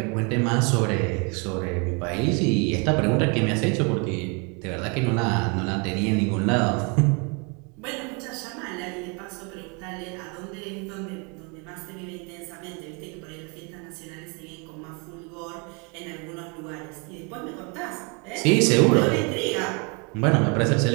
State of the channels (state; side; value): quieter; left; 33.1 dB